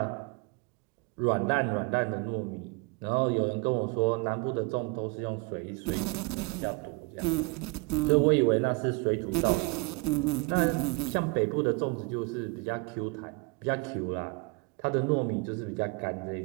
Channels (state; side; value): quieter; left; 28.4 dB